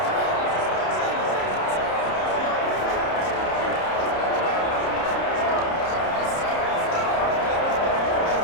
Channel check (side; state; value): right; late; 30 ms